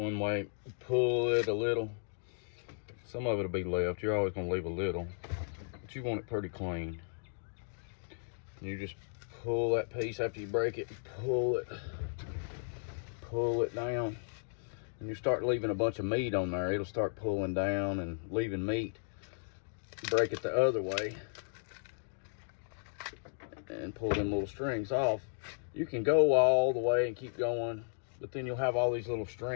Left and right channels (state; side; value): silent; right; digital silence